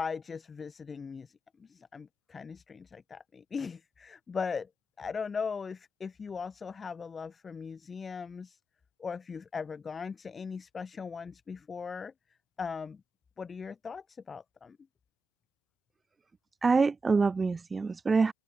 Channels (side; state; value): both; normal; correlation 0.90